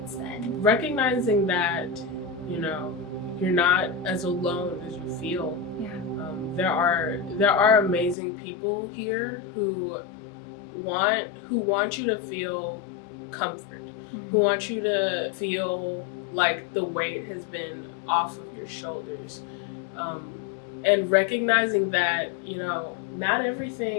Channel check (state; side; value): drops out; right; at 8.2 s